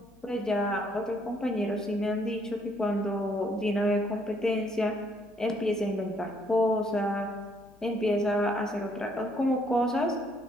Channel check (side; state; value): left; noise; hum, 29 dB below the sound